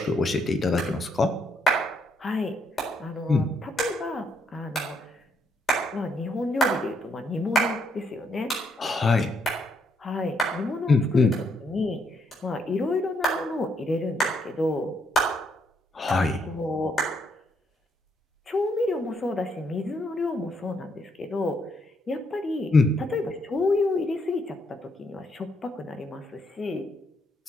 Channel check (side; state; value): both; normal; correlation 0.73